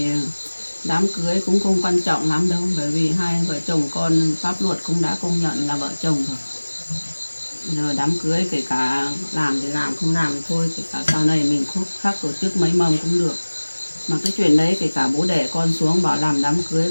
đám cưới cũng không quan trọng lắm đâu, bởi vì hai vợ chồng con pháp luật cũng đã công nhận là vợ chồng rồi. Giờ đám cưới kể cả làm thì làm, không làm thì thôi, kể cả sau này mình khác tổ chức mấy mâm cũng được. Mà cái chuyện đấy kể cả bố đẻ con xuống bảo làm đám cưới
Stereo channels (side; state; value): both; inverted; correlation -1.00